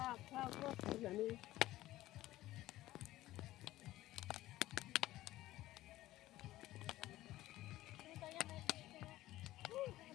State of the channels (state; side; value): quieter; right; 15.9 dB